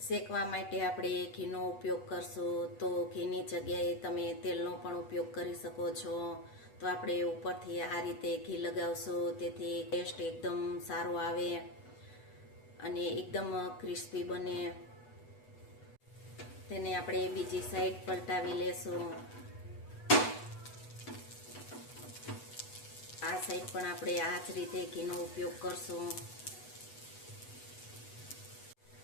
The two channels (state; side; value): late; right; 8.1 ms